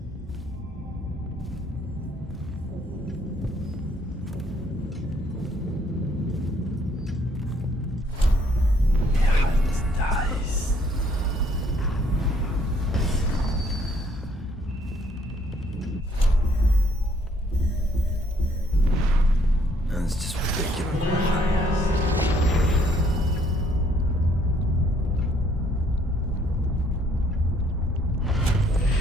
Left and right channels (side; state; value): both; normal; correlation 0.65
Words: That's just ridiculous.